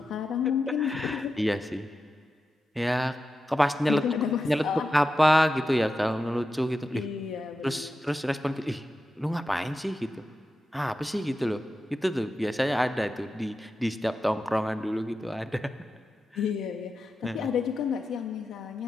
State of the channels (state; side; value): normal; both; correlation 0.90